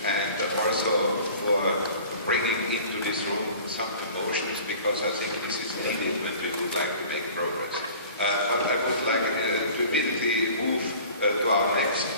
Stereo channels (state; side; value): inverted; both; correlation -0.44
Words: and also for bringing into this room some emotions, because I think this is needed when we would like to make progress. But I would like to immediately move to our next